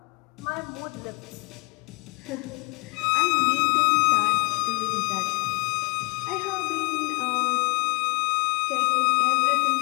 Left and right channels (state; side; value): quieter; right; 30.7 dB